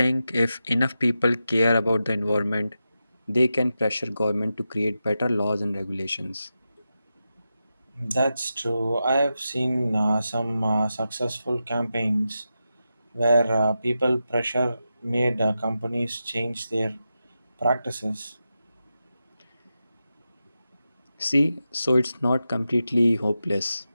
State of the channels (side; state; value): both; inverted; correlation -0.90